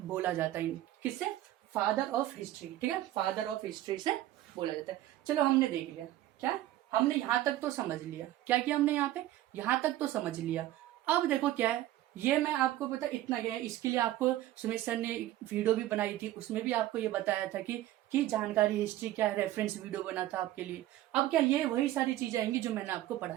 बोला जाता है किससे, फादर ऑफ हिस्ट्री। ठीक है, फादर ऑफ हिस्ट्री से बोला जाता है। चलो हमने देख लिया, क्या हमने यहाँ तक तो समझ लिया, क्या किया हमने यहाँ पे, यहाँ तक तो समझ लिया। अब देखो क्या है, ये मैं आपको पता इतना गया है, इसके लिए आपको सुमित सर ने वीडियो भी बनाई थी, उसमें भी आपको ये बताया था कि जानकारी हिस्ट्री क्या है, रेफरेंस वीडियो बना था आपके लिए। अब क्या ये वही सारी चीजें आएंगी जो मैंने आपको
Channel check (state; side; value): quieter; left; 14.5 dB